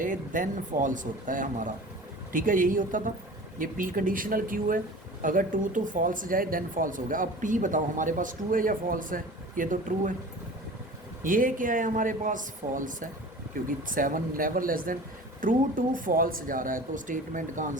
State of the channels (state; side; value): normal; both; correlation 0.40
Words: देन फॉल्स होता है हमारा। ठीक है, यही होता था। ये P कंडीशनल Q है, अगर ट्रू टू फॉल्स जाए देन फॉल्स हो गया। अब P बताओ हमारे पास ट्रू है या फॉल्स है, ये तो ट्रू है। ये क्या है हमारे पास, फॉल्स है, क्योंकि 7 never less than true to false जा रहा है, तो स्टेटमेंट का